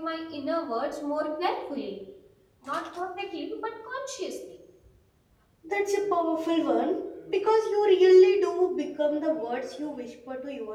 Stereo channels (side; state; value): both; identical; correlation 1.00